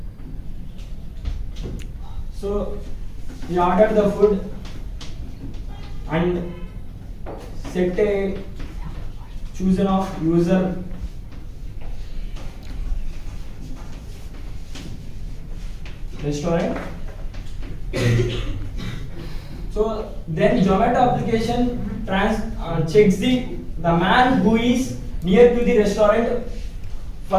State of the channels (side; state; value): both; identical; correlation 1.00